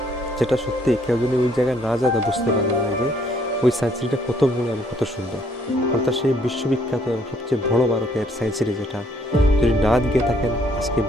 যেটা সত্যি কেউ যদি ওই জায়গায় না যায় তা বুঝতে পারবে না যে ওই সায়েন্স সিটিটা কত বড় এবং কত সুন্দর। অর্থাৎ সেই বিশ্ববিখ্যাত এবং সবচেয়ে বড় ভারতের সায়েন্স সিটি, যেটা যদি না গিয়ে থাকেন আজকে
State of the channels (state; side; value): normal; both; correlation 0.66